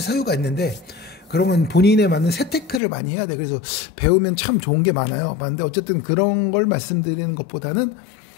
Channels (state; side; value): drops out; right; at 2.8 s